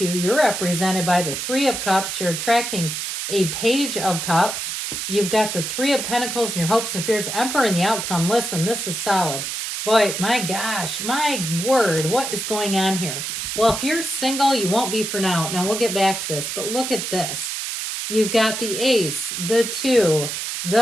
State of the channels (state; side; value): noise; right; hiss, 4 dB below the sound